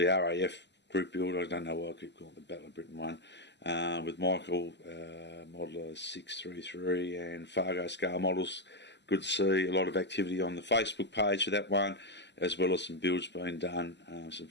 RAF group build. I don't know why I keep calling it the Battle of Britain one, with Michael, Modeler 633 and Fargo scale models. Good to see a lot of activity on the Facebook page for that one, as well as some builds being done, some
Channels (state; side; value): late; right; 0.51 ms